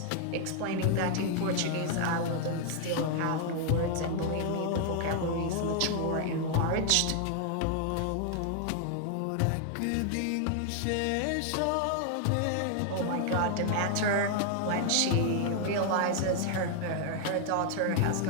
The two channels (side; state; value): both; different; correlation 0.00